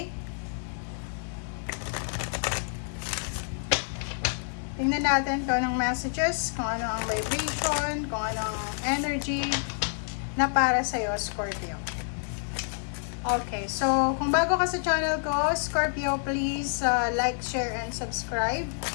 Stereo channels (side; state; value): right; silent; 59 dB below the other